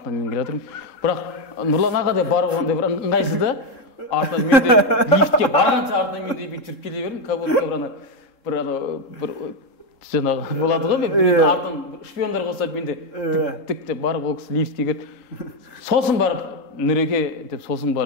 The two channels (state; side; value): late; right; 3.7 ms